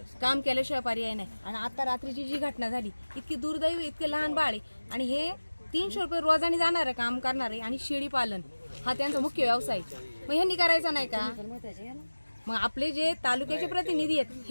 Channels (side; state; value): both; inverted; correlation -1.00